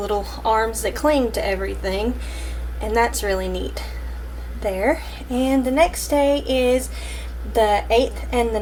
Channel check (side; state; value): both; identical; correlation 1.00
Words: arms that cling to everything, and that's really neat there. And the next day is the 8th and the